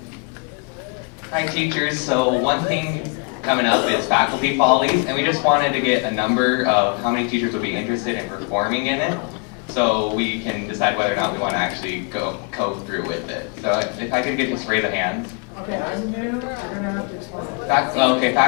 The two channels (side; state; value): right; quieter; 33.9 dB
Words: Hi teachers, so one thing coming up is faculty follies, and we just wanted to get a number of how many teachers would be interested in performing in it, so we can decide whether or not we want to actually go through with it. So if I could get just raise a hand. Okay, I'm new. You're gonna have to explain that. Okay,